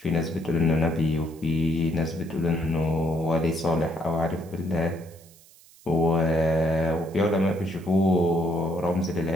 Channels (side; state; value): right; noise; hiss, 25 dB below the sound